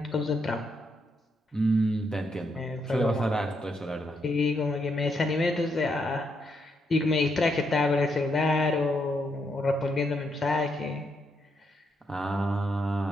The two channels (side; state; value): both; normal; correlation 0.78